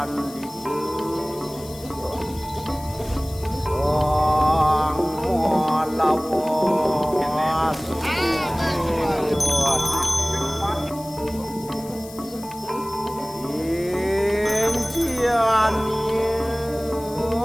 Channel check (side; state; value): left; noise; hiss, 18 dB below the sound